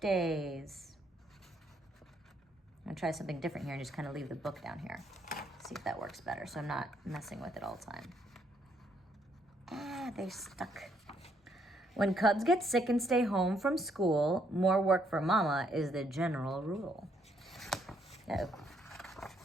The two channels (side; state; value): both; normal; correlation 0.72